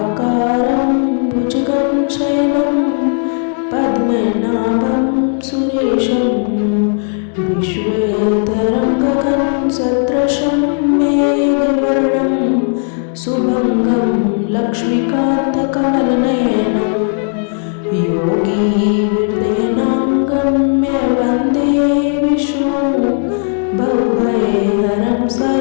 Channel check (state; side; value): silent; right; 56 dB below the other